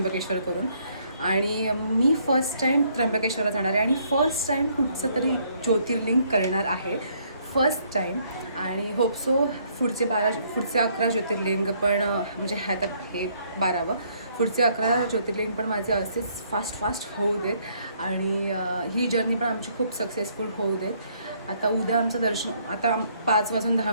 करून आणि मी फर्स्ट टाईम त्र्यंबकेश्वरला जाणार आहे आणि फर्स्ट टाईम कुठचं तरी ज्योतिर्लिंग करणार आहे. फर्स्ट टाईम आणि होप सो पुढचे 11 ज्योतिर्लिंग पण म्हणजे आता हे 12वं, पुढचे 11 ज्योतिर्लिंग पण माझे असेच फास्ट होऊ देत आणि ही जर्नी पण आमची खूप सक्सेसफुल होऊ देत. आता उद्या आमचं दर्शन, आता 5 वाजून 10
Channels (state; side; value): inverted; both; correlation -0.67